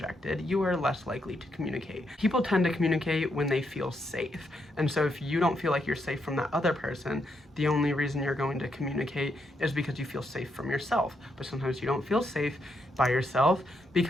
you are less likely to communicate. People tend to communicate when they feel safe. And so if you don't feel like you're safe from that other person, the only reason you're going to communicate is because you feel safe from yourself. But sometimes you don't feel safe by yourself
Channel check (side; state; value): both; normal; correlation 0.79